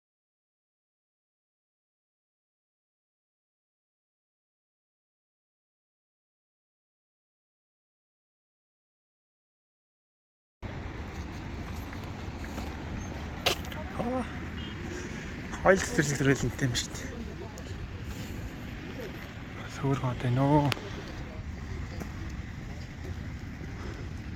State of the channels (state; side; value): identical; both; correlation 1.00